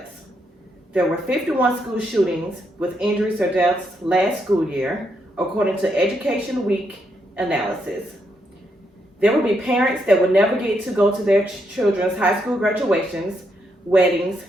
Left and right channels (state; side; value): normal; both; correlation 0.78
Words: There were 51 school shootings with injuries or deaths last school year, according to Education Week analysis. There will be parents that will never get to go to their children's high school graduations, weddings,